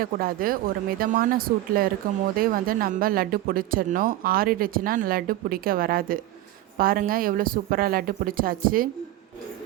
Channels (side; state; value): left; quieter; 15.1 dB